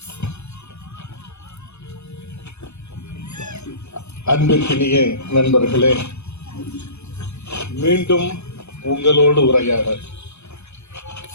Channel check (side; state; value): right; late; 0.81 ms